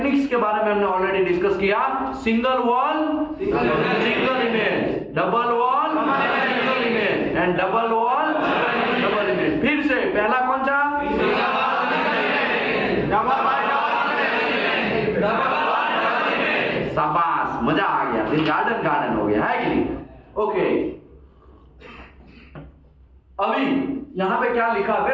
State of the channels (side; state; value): both; identical; correlation 1.00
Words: के बारे में हमने ऑलरेडी डिस्कस किया। Single wall single image, double wall single image and double wall double image. फिर से पहला कौन सा? शाबाश, मजा आ गया। फिर गार्डन हो गया, है कि नहीं? ओके, अभी यहां पे क्या लिखा?